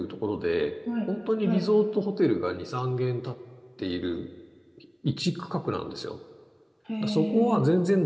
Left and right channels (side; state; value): both; identical; correlation 1.00